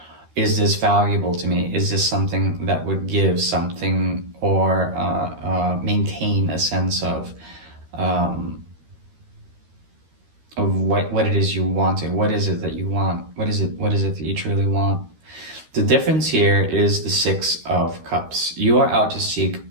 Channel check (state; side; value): late; left; 13 ms